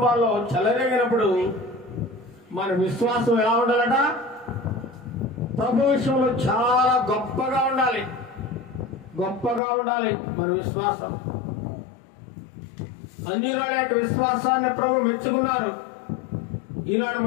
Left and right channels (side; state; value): right; drops out; at 9.6 s